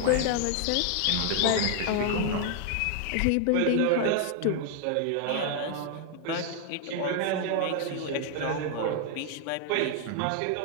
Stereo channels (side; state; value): both; different; correlation 0.00